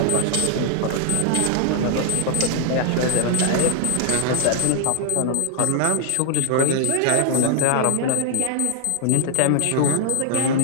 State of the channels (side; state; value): both; different; correlation 0.00